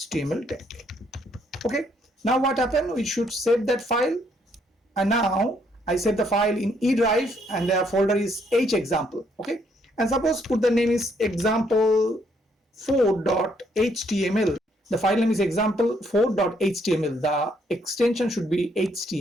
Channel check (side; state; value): both; normal; correlation 0.70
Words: tag, okay. Now what happened, we should save that file, and now I save the file in E drive, and the folder is hexample, okay, and suppose put the name is example4.html. The file name is example4.html. The extension should be